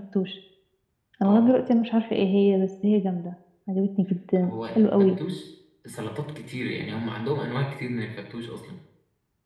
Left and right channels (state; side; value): identical; both; correlation 1.00